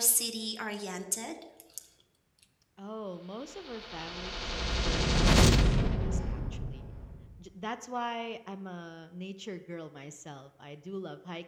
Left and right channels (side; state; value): both; identical; correlation 1.00